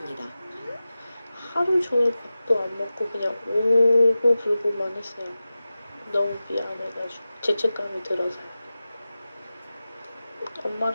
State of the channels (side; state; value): both; inverted; correlation -0.95